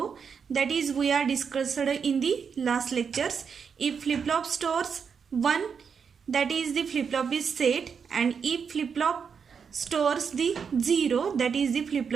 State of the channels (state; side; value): quieter; left; 6.4 dB